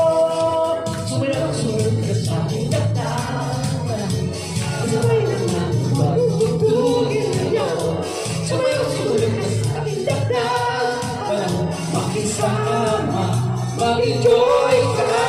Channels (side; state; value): both; identical; correlation 1.00